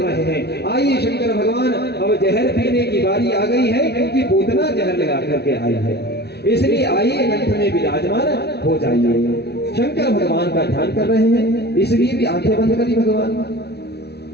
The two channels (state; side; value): late; right; 0.48 ms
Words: हैं। आइए शंकर भगवान, अब जहर पीने की बारी आ गई है, क्योंकि पूतना जहर लगा करके आई है, इसलिए आइए कंठ में विराजमान हो जाइए। शंकर भगवान का ध्यान कर रहे हैं, इसलिए भी आंखें बंद करी भगवान।